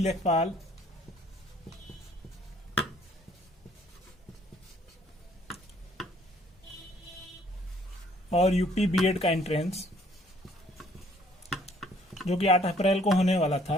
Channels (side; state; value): both; normal; correlation 0.61